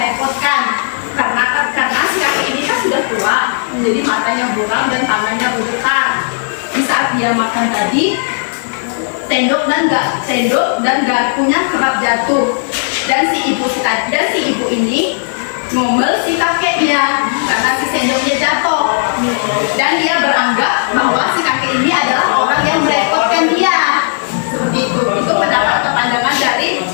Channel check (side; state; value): right; silent; digital silence